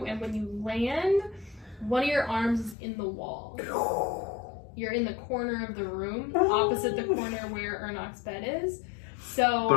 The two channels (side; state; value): right; drops out; at 2.8 s